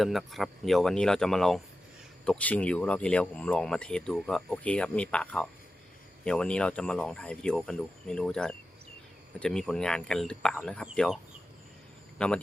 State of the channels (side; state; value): both; normal; correlation 0.92